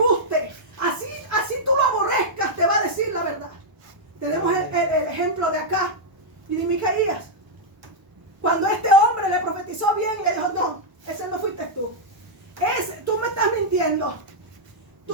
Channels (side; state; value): left; late; 1.0 ms